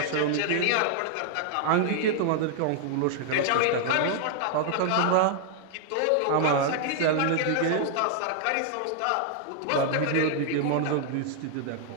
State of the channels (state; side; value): different; both; correlation 0.00